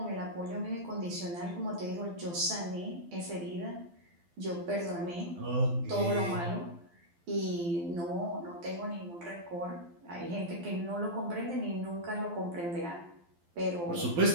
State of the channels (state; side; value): late; left; 12 ms